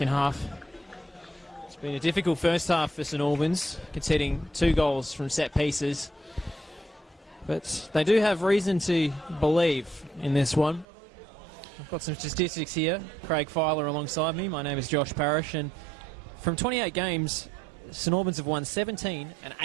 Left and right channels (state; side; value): drops out; left; at 10.9 s